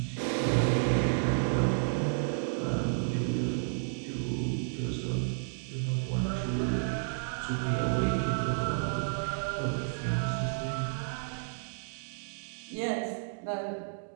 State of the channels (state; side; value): silent; left; digital silence